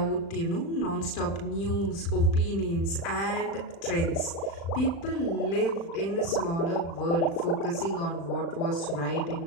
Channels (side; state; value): right; late; 36 ms